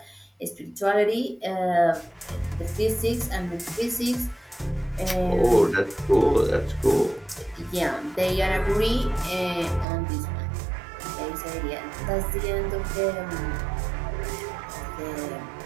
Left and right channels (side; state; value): left; drops out; at 9.9 s